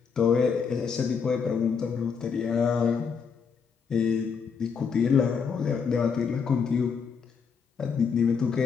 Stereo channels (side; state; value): right; quieter; 6.1 dB